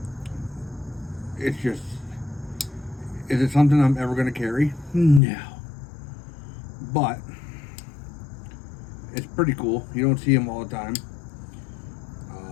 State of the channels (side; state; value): right; drops out; at 5.2 s